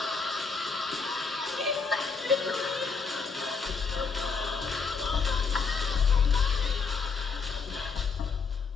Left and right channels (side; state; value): right; quieter; 5.0 dB